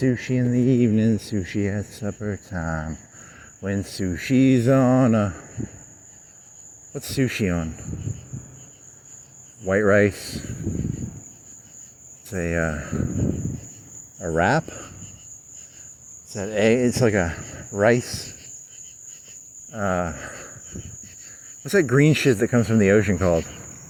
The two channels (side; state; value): both; identical; correlation 1.00